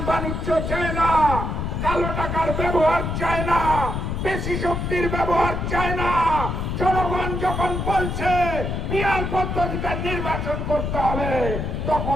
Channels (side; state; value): left; noise; rumble, 2 dB below the sound